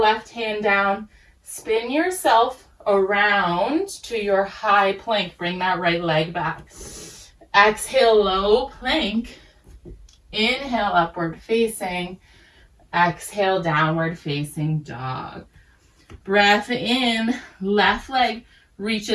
left hand down. Spin yourself around to your high plank. Bring that right leg back. Exhale, low plank. Inhale, upward facing. Exhale, downward facing dog. Breath in, left leg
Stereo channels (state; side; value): identical; both; correlation 1.00